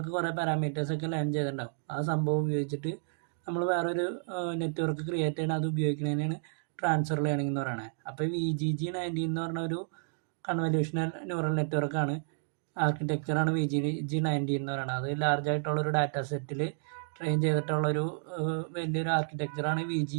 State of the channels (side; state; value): left; silent; digital silence